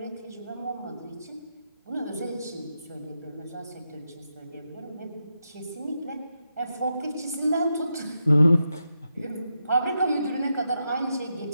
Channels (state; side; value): inverted; both; correlation -0.85